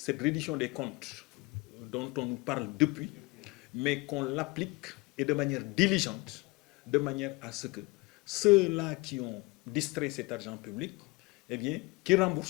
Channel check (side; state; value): right; quieter; 24.4 dB